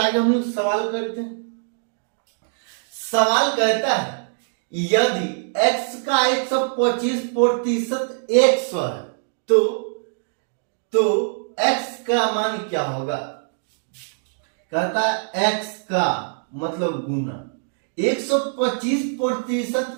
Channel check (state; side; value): silent; left; digital silence